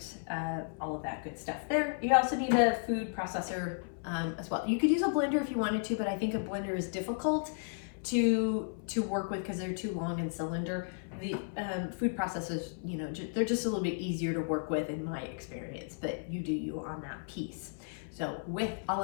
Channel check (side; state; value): right; silent; 55 dB below the other